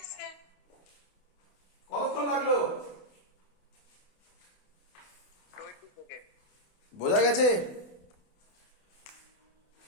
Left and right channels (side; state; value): right; late; 28 ms